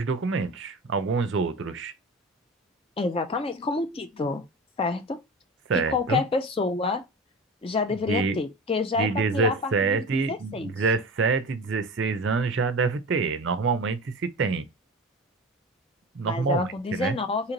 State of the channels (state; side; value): normal; both; correlation 0.31